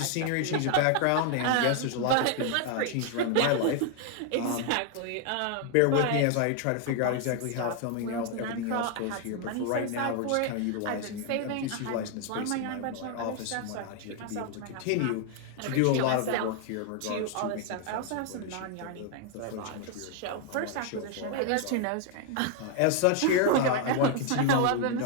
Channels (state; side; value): different; both; correlation 0.00